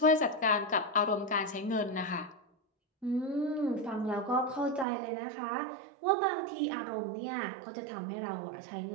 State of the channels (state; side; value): drops out; left; at 4.9 s